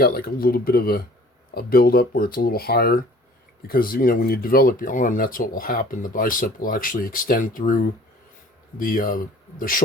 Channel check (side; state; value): both; normal; correlation 0.51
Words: like a little bit of a build-up where it's a little higher. Because, when you develop your arm, that's what will happen. The bicep will actually extend through the